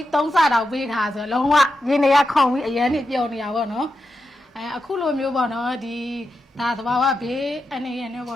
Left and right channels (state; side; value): normal; both; correlation 0.88